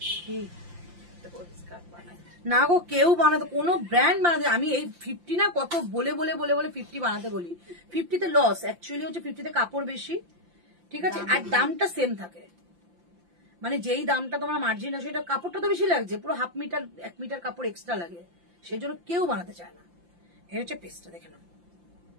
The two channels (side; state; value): left; late; 5.8 ms